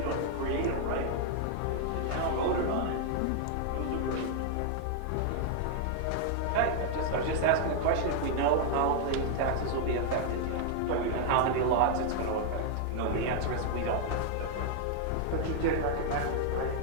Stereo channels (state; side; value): different; both; correlation 0.00